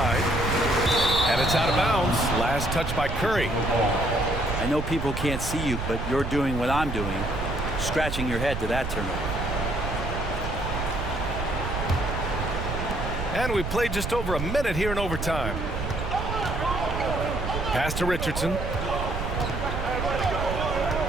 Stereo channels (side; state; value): right; noise; rumble, 4 dB below the sound